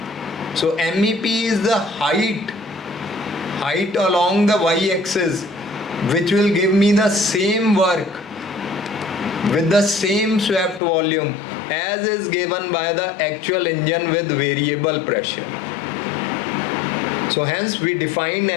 So MEP is the height along the y-axis, which will give me the same work with the same swept volume as is given by the actual engine with variable pressure. So hence we define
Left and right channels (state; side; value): drops out; right; at 10.8 s